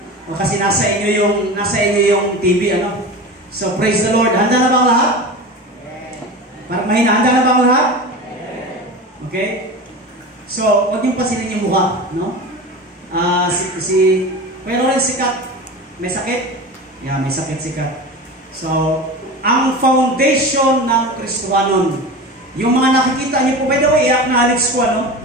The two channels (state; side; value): normal; both; correlation 0.30